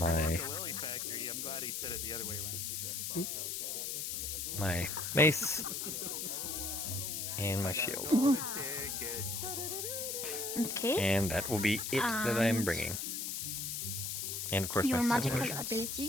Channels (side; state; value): left; noise; hiss, 3 dB below the sound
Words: my mace and my shield. Okay. And that will be it that I'm bringing. And of course Your my magical potions.